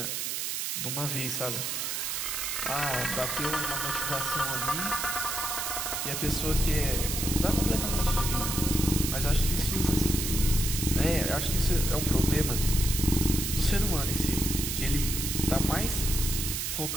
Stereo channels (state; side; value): noise; right; hiss, 2 dB below the sound